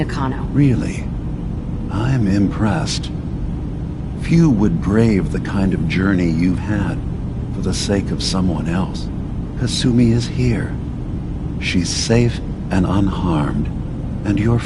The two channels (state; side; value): identical; both; correlation 1.00